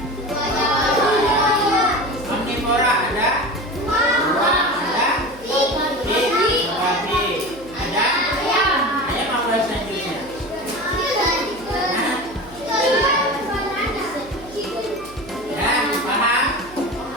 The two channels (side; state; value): right; noise; hum, 21 dB below the sound